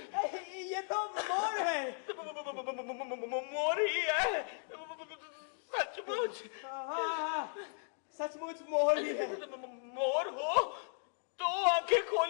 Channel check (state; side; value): silent; right; 54 dB below the other